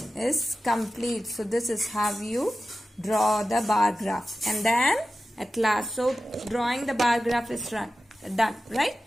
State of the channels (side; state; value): both; normal; correlation 0.93